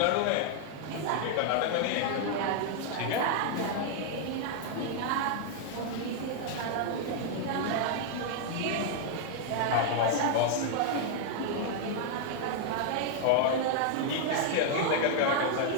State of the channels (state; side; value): different; both; correlation 0.00